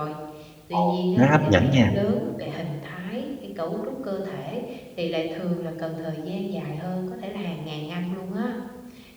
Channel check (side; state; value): both; identical; correlation 1.00